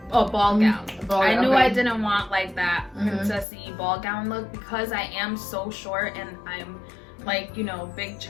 Oh, ball gown. I knew I didn't want like that princessy ball gown look because I am so short and I'm like, you know, big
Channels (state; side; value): drops out; right; at 3.5 s